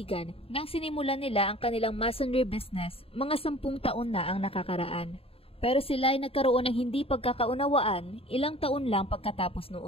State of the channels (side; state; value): right; late; 0.27 ms